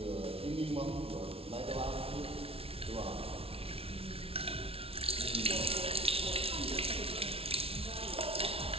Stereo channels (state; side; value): late; left; 0.27 ms